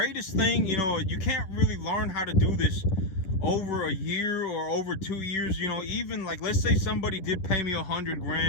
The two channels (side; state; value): right; late; 10 ms